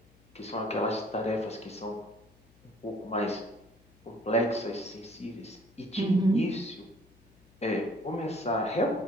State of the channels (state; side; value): noise; left; hum, 29 dB below the sound